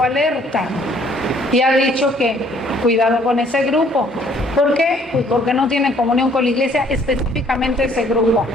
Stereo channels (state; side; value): normal; both; correlation 0.61